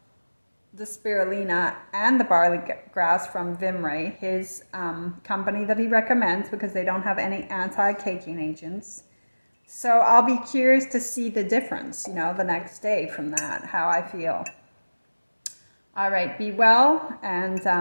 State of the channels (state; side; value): inverted; both; correlation -1.00